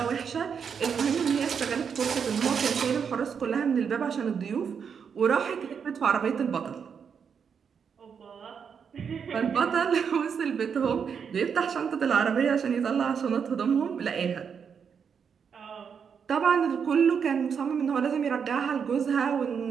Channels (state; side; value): quieter; left; 6.8 dB